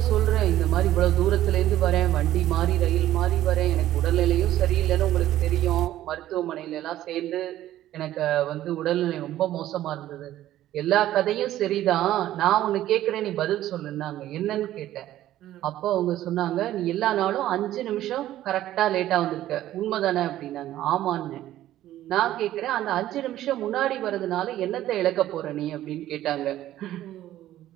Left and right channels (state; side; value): quieter; left; 13.5 dB